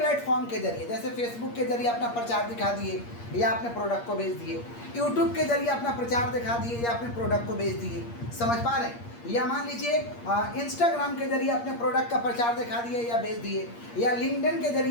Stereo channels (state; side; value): late; right; 8.5 ms